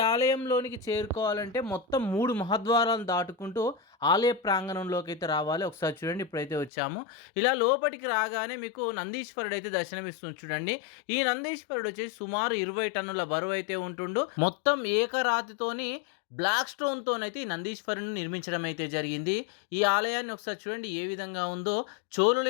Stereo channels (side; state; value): right; drops out; at 6.7 s